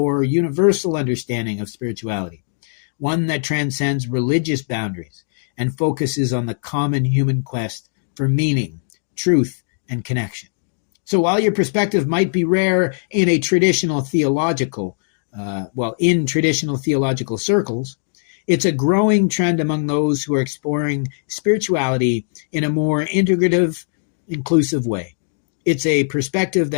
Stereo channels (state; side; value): silent; right; digital silence